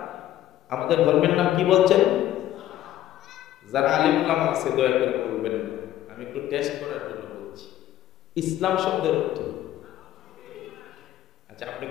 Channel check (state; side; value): quieter; right; 12.9 dB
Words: আমাদের ধর্মের নাম কি বলছেন? যারা আলিম উলামা আছে দয়া করে বলবেন। আমি একটু টেস্ট করার জন্য বলছি। ইসলাম শব্দের অর্থ, আচ্ছা আপনি